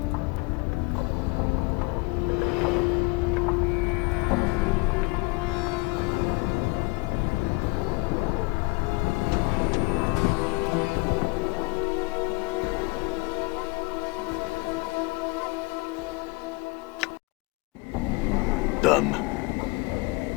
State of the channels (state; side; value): quieter; right; 26.1 dB